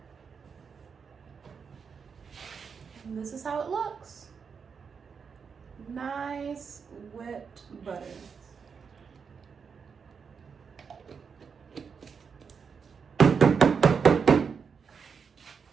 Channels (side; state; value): left; quieter; 6.1 dB